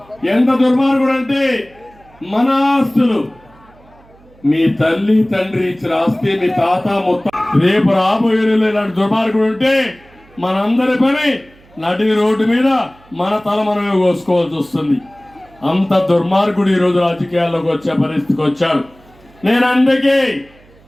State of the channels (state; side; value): noise; right; hum, 28 dB below the sound